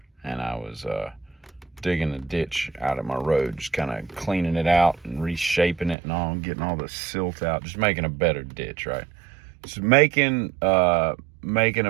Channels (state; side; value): drops out; left; at 6.0 s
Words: and I was digging a ditch out of my road, just kind of cleaning it out and reshaping it and all, getting all the silt out, just making a better ditch, right? Just making a